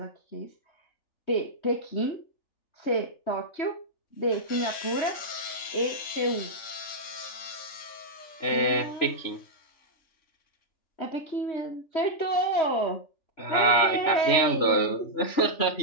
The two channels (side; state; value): right; late; 3.4 ms